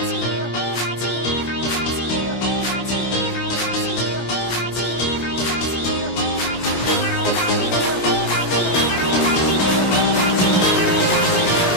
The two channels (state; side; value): late; right; 17 ms